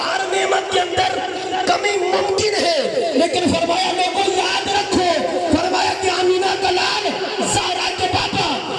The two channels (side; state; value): both; identical; correlation 1.00